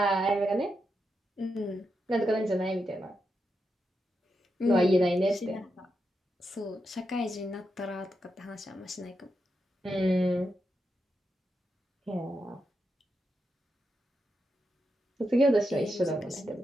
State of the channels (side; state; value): both; normal; correlation 0.85